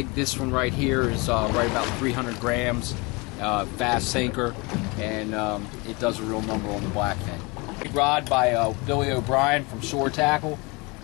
This one right here is right about 300 grams, fast sinker, and it does a real number on the blackfin. Big rod by Billy O'Brien from Shore Tackle,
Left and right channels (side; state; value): right; quieter; 26.9 dB